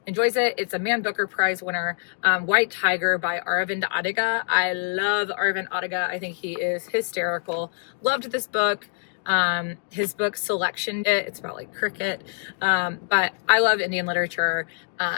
enjoys it. It's a Man Booker Prize winner, White Tiger by Aravind Adiga. I love Aravind Adiga. I think he is hysterical. Loved this book. His book Selection, it's about like cricket, but I love Indian literature,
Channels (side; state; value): right; silent; 62 dB below the other